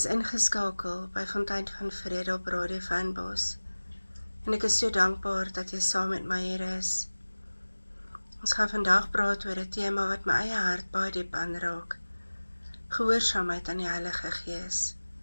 ingeskakel by Fontein van Vrede op Radio Fynbos. En ek is so dankbaar dat jy saam met my hier is. Ons gaan vandag praat oor 'n tema wat my eie hart baie diep aanraak. Gehoorsaamheid aan die Heilige Gees.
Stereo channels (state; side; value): inverted; both; correlation -1.00